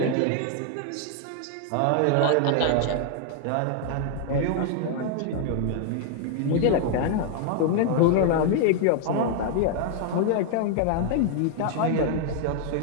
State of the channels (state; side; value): different; both; correlation 0.00